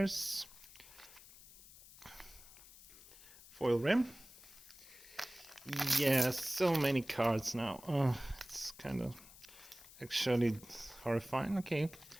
foil rim. Yeah, so many cards now. It's kind of actually horrifying. Okay,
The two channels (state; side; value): noise; left; hiss, 19 dB below the sound